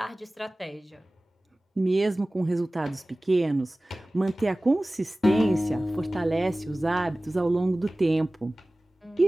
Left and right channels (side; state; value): both; normal; correlation 0.98